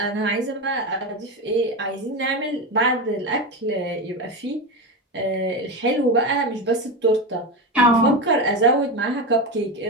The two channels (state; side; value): normal; both; correlation 0.18